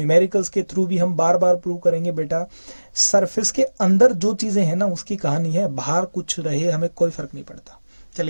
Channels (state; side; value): inverted; both; correlation -1.00